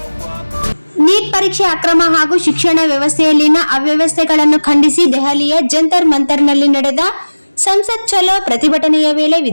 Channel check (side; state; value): both; inverted; correlation -1.00